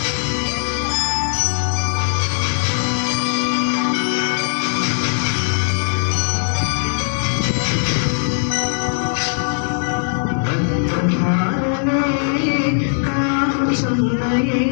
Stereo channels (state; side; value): silent; right; digital silence